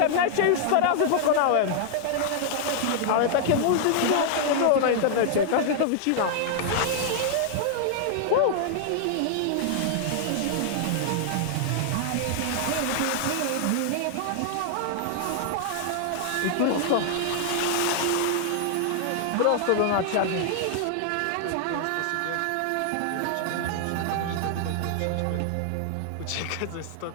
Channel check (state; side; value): different; both; correlation -0.01